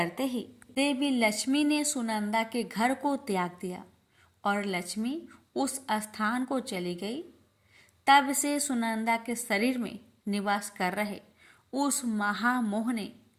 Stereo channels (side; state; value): both; identical; correlation 1.00